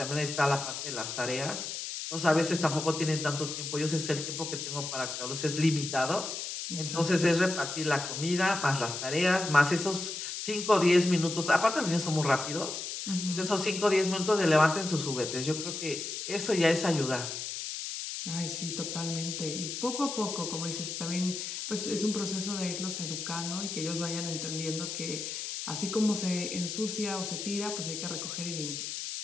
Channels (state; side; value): noise; left; hiss, 5 dB below the sound